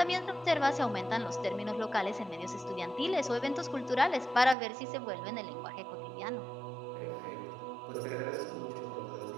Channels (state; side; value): drops out; left; at 4.5 s